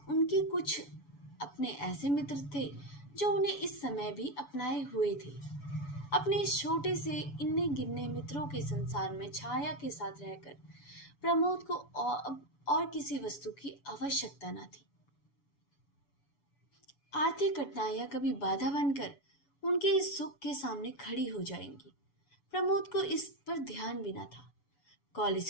कुछ अपने ऐसे मित्र थे जो उन्हें इस समय भी अपनाए हुए थे। अपने इस छोटे से इन्ने गिनने मित्रों के संसार में छाया के साथ रहकर प्रमोद को और किसी वस्तु की आवश्यकता न थी। आर्थिक कठिनाइयां कभी बाधा बनकर उनके इस सुख के सामने खड़ी हो जाएंगी। प्रमोद को इस पर ध्यान भी न था।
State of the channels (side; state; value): right; late; 7.0 ms